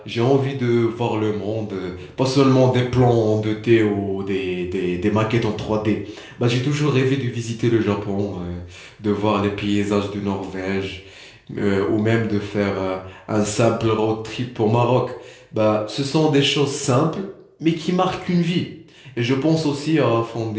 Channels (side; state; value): both; identical; correlation 1.00